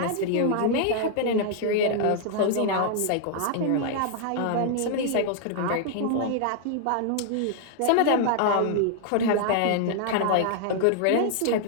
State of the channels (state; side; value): different; both; correlation -0.01